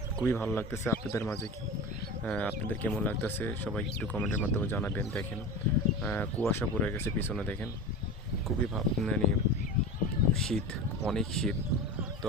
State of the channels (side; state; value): both; normal; correlation 0.29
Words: খুবই ভালো লাগতেছে। আপনাদের মাঝে আপনাদের কেমন লাগতেছে সবাই একটু কমেন্টের মাধ্যমে জানাবেন। দেখেন কুয়াশা পড়ে গেছে পিছনে, দেখেন খুবই মানে শীত, অনেক শীত। তো